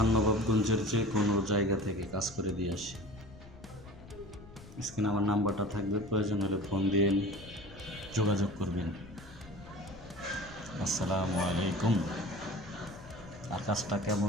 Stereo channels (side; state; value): left; noise; rumble, 18 dB below the sound